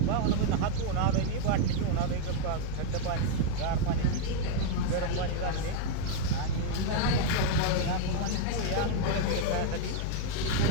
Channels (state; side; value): different; both; correlation 0.00